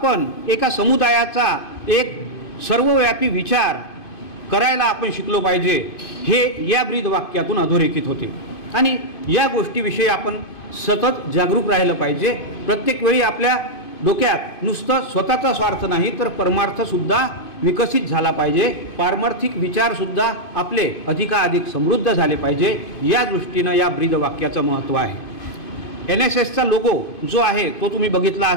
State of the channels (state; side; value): late; right; 2.5 ms